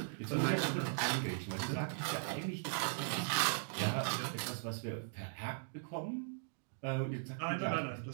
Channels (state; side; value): silent; left; digital silence